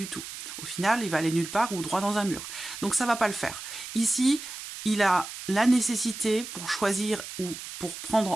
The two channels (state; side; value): noise; right; hiss, 10 dB below the sound